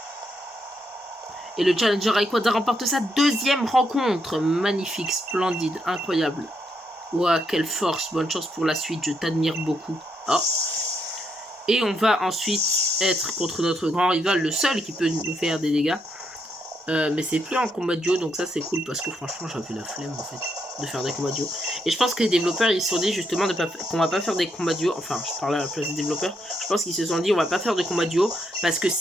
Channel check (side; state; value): both; normal; correlation 0.78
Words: Et le Challenger Rayquaza remporte sa 2e rencontre. Magnifique, splendide, incroyable. Ouah, quelle force, bonne chance pour la suite, je t'admire beaucoup. Oh. Et on va ensuite être contre notre grand rival, le seul qui peut nous faire des dégâts. Mais c'est plus en combat duo, donc ça c'est cool parce que franchement j'avais la flemme en fait de faire des combats duo. Et je pense que les développeurs ils se sont dit justement qu'on va pas faire des combats duo. Enfin, je parle à la place des développeurs. Je pense qu'ils se sont dit on va pas faire de combats duo parce que